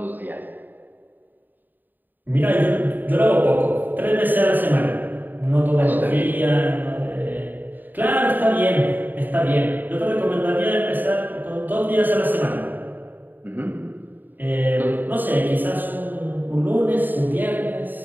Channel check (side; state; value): left; late; 0.089 ms